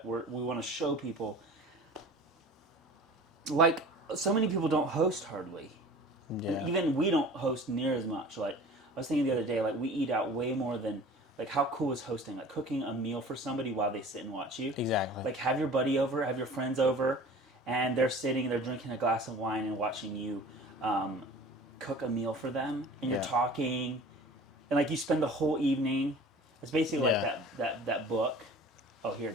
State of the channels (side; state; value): both; normal; correlation 0.43